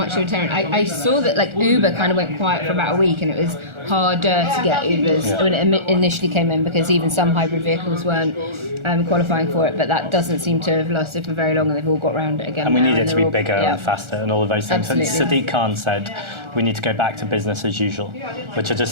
of a deterrent. I saw that like Uber kind of went quiet for about a week, and it was harder to get Ubers when it initially came in, because even some hybrid vehicles weren't qualifying for it, but that doesn't seem to have lasted for very long, and they've all got around it again. And we now, need it to be all, bigger and faster and all of those things. Absolutely. And Sadiq Khan said we need to go back to business as usual, which I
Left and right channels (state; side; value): late; left; 1.4 ms